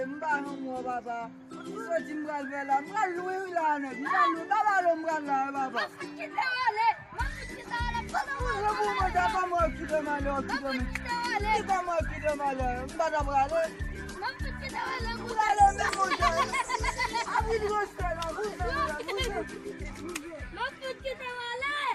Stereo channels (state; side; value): identical; both; correlation 1.00